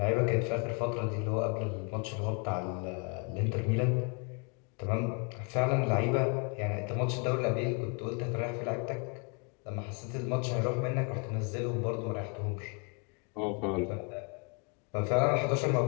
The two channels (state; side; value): quieter; right; 33.6 dB